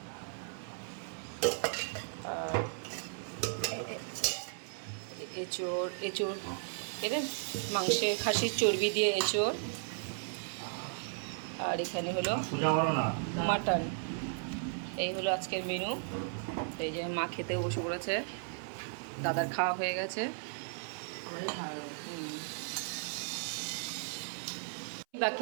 এঁচোড় এঁচোড় এদের মাংসের খাসির চর্বি দিয়ে এঁচোড়, আর এখানে হলো মাটন। এই হলো আজকের মেনু। এই যে মা খেতেও বসে পড়েছে, দাদার খাওয়া হয়ে গেছে। বাকি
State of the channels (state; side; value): silent; left; 54 dB below the other